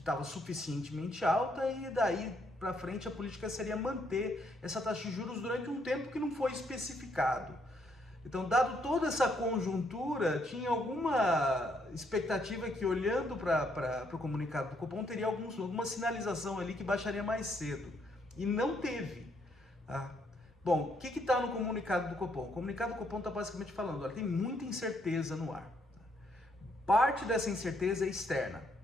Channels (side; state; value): both; normal; correlation 0.72